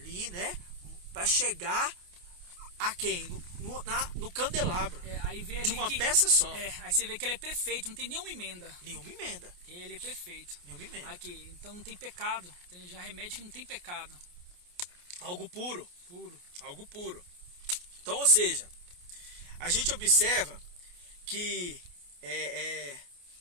né? Para chegar a quem? No candelabro. Aí vê ali de uma peça só. Aí você vê que ele é perfeito, não tem nenhuma emenda. Nenhuma emenda. Ele é perfeito. Nenhuma emenda. Aqui, então não tem pecado. Já remete que não tem pecado. Algo puro. Puro. Algo puro. Então, ou seja, a gente observa que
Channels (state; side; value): late; left; 28 ms